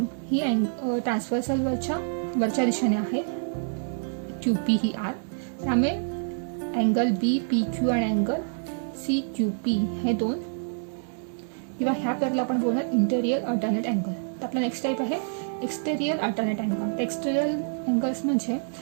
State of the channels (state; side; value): silent; left; 60 dB below the other